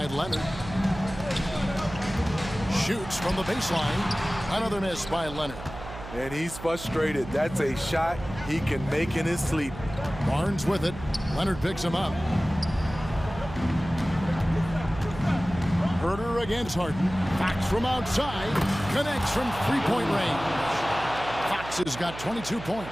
Leonard. Shoots from the baseline. Another miss by Leonard. And he's frustrated. That's a shot he can make in his sleep. Barnes with it. Leonard picks him up. Herter against Harden. Fox from outside. Connects from three-point range. Fox has got 22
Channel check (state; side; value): noise; right; hum, 12 dB below the sound